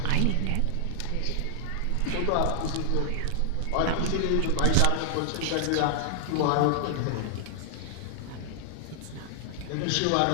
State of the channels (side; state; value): both; different; correlation 0.00